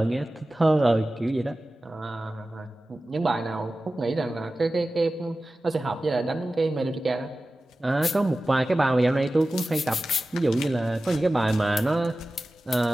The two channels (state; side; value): normal; both; correlation 0.95